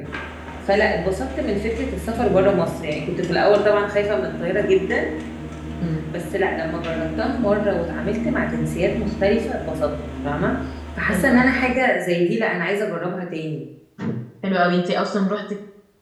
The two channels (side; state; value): both; identical; correlation 1.00